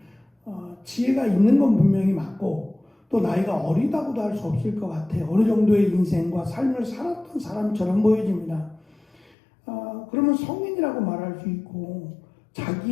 지혜가 있는 건 분명히 맞고 또 나이가 어리다고도 할 수 없을 것 같아요. 어느 정도의 인생과 삶을 살았던 사람처럼 보여집니다. 그러면 성인이라고 말할 수 있고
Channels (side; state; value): right; drops out; at 9.3 s